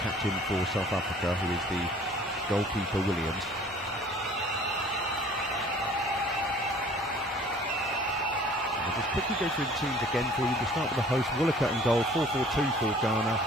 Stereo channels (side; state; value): both; normal; correlation 0.51